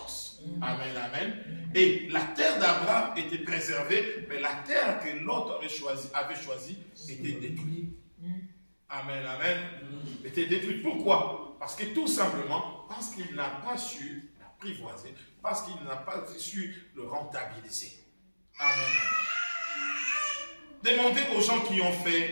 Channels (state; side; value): inverted; both; correlation -1.00